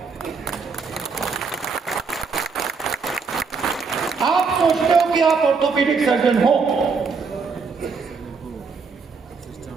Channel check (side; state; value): left; quieter; 5.0 dB